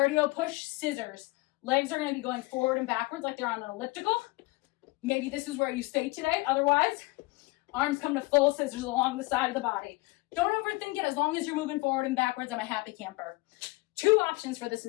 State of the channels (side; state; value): right; quieter; 22.9 dB